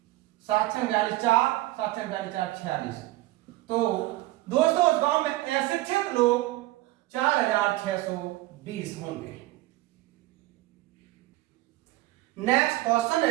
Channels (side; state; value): left; quieter; 17.9 dB